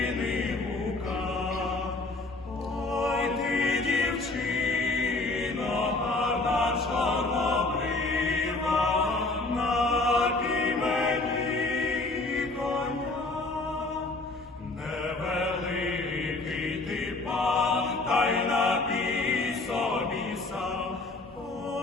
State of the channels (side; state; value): right; quieter; 3.2 dB